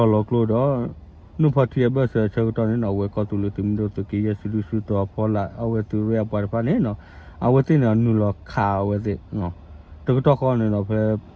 đó nó phát hiện bây giờ chơi đó này nó với có tụi mình đó tụi kia xử đó phải là ở tụi rồi bảo phải này nó ở tụi nó nuôi là khao với nó tụi đó con này nó phải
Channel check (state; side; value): identical; both; correlation 1.00